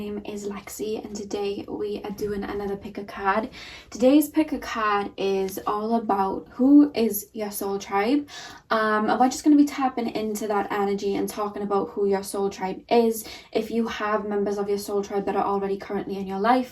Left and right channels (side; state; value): both; identical; correlation 1.00